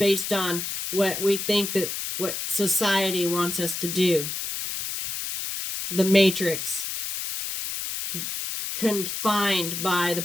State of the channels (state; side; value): noise; left; hiss, 4 dB below the sound